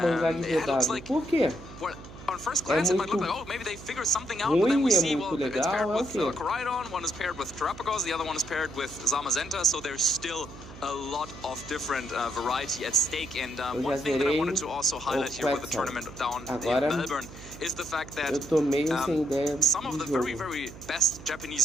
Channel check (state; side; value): noise; right; hum, 16 dB below the sound